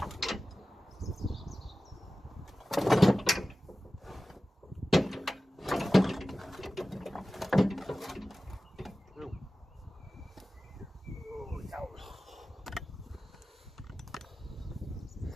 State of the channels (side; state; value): both; normal; correlation 0.96